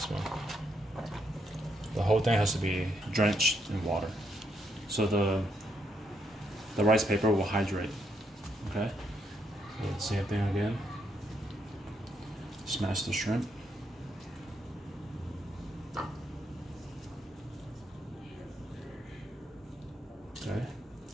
one. The whole thing has to be drenched in water, so the rice paper will hydrate. Okay. So same thing again. Smash the shrimp. Okay.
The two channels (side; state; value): both; normal; correlation 0.77